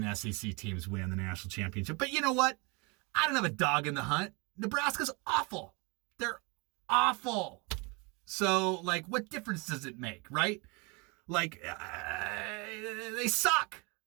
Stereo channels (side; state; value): left; quieter; 29.6 dB